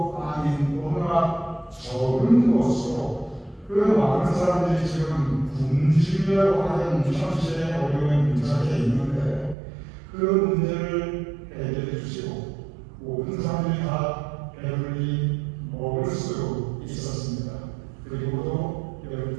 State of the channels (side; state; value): left; drops out; at 9.6 s